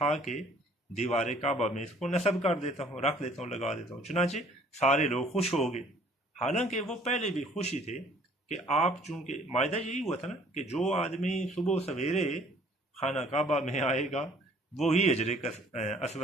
کے دیوار کعبہ میں اس کو نصب کر دیتا ہوں، رکھ دیتا ہوں، لگا دیتا ہوں۔ چنانچہ سارے لوگ خوش ہو گئے۔ حالانکہ وہ پہلے بھی خوشی تھے کہ آپ، چونکہ معاہدہ یہی ہوا تھا نا کہ جو آدمی صبح سویرے خانہ کعبہ میں آئے گا وہی حجر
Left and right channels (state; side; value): normal; both; correlation 0.57